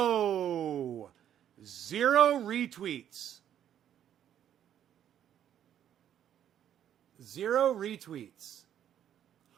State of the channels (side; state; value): left; quieter; 10.3 dB